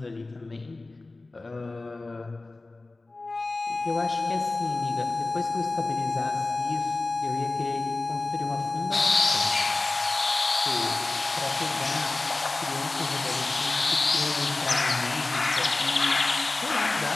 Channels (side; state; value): right; quieter; 3.2 dB